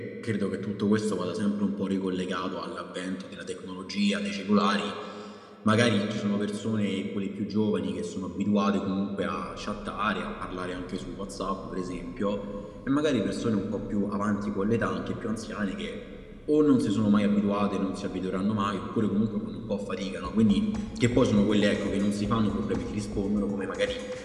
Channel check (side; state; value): both; identical; correlation 1.00